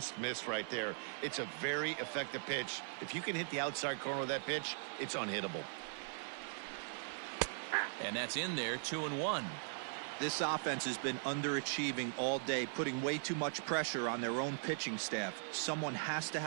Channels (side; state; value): left; silent; 51 dB below the other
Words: missed right there. It's a very effective pitch. If you can hit the outside corner of that pitch, it's unhittable. And that's in there, 2-1. This offense has been underachieving all day, putting way too much pressure on their own pitching staff. Someone has to